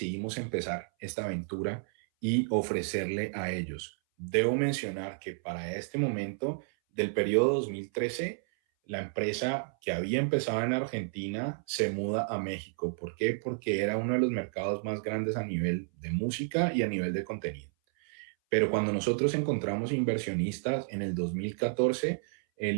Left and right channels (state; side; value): silent; left; 57 dB below the other